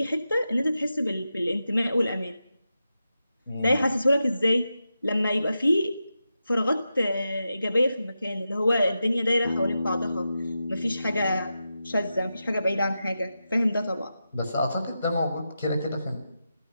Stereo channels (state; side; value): inverted; both; correlation -0.90